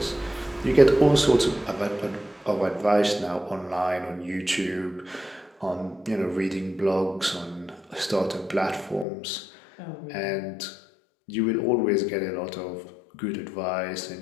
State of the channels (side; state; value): right; drops out; at 9.1 s